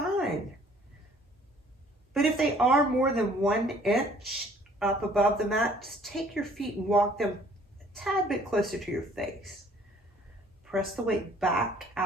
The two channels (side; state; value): both; normal; correlation 0.57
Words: But if they are more than 1 inch up above the mat, just take your feet and walk them a tad bit closer to your face. Press the weight back